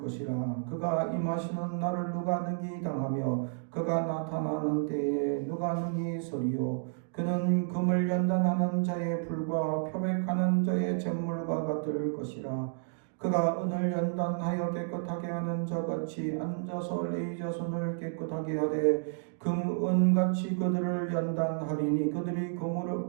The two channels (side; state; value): left; silent; digital silence